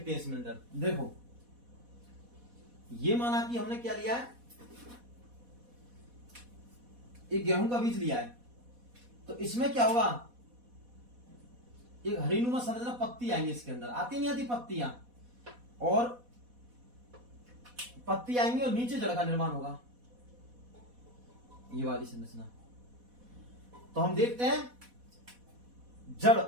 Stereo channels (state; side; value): late; left; 4.1 ms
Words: हैं इसमें अंदर। देखो, ये माना कि हमने क्या लिया है? एक गेहूं का बीज लिया है। तो इसमें क्या होगा? एक हरीनुमा संरचना, पत्ती आएंगी इसके अंदर। आती नहीं आती पत्तियां? और पत्ती आएंगी और नीचे जड़ का निर्माण होगा, ये वाली संरचना। तो हम देखते हैं जड़,